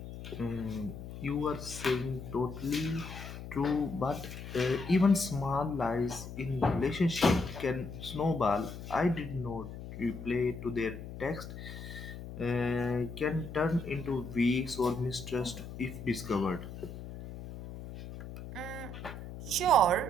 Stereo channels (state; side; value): noise; left; hum, 10 dB below the sound